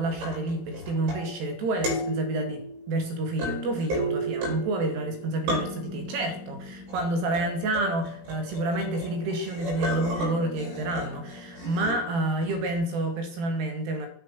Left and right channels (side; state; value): left; late; 18 ms